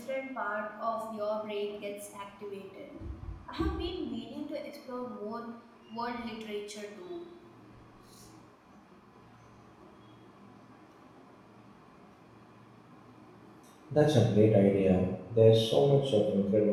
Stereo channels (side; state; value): both; identical; correlation 1.00